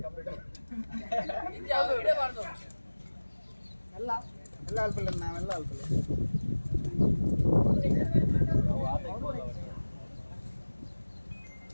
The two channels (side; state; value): both; inverted; correlation -1.00